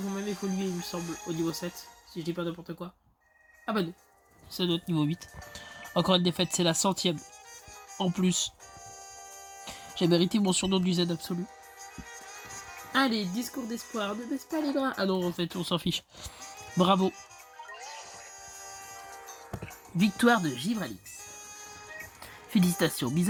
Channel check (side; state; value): both; identical; correlation 1.00